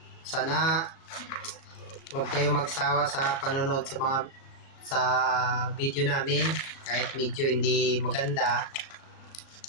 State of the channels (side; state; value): right; late; 36 ms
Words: Sana huwag kayo magsawa sa panonood sa video namin, kahit medyo hindi maganda,